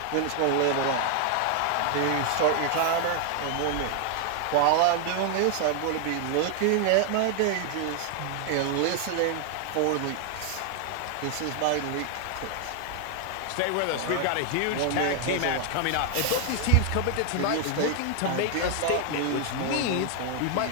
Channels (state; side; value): different; both; correlation 0.00